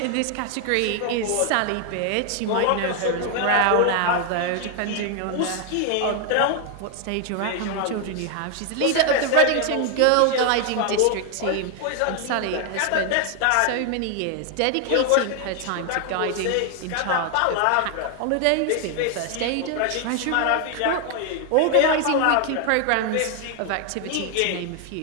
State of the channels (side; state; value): both; different; correlation 0.00